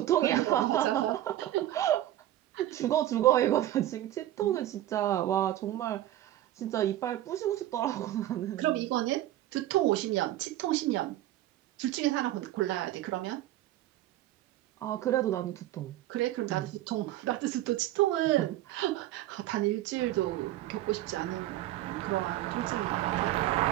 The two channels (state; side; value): quieter; left; 14.0 dB